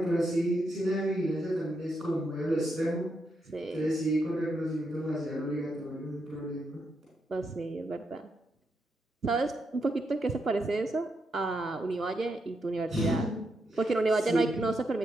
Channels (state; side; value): normal; both; correlation 0.82